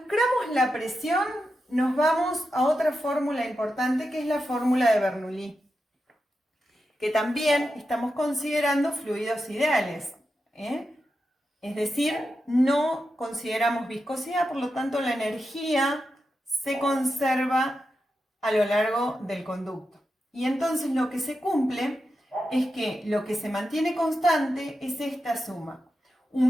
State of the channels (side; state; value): both; normal; correlation 0.89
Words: la presión, nos vamos a otra fórmula importante que es la fórmula de Bernoulli, que también estamos considerando fluidos ideales, Es decir, no consideramos viscosidad, por lo tanto la energía se conserva a lo largo del conducto. Y entonces lo que se cumple es que lo que se mantiene constante es esta suma.